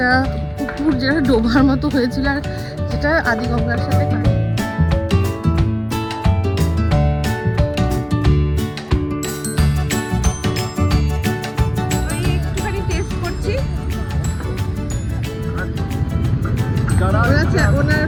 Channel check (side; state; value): both; identical; correlation 1.00